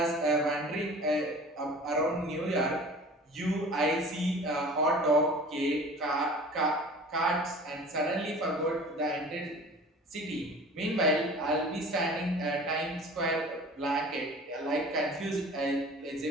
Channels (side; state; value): both; normal; correlation 0.43